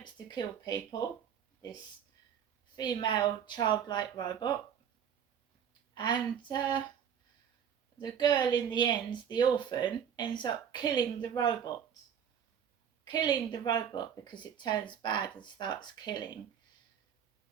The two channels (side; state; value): left; quieter; 8.4 dB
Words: to kill people, this female childlike robot. And the girl in the end, the orphan, ends up killing the robot. Killing the robot because it turns bad and starts killing.